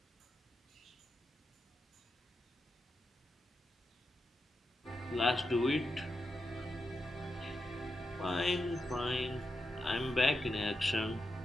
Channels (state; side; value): normal; both; correlation 0.87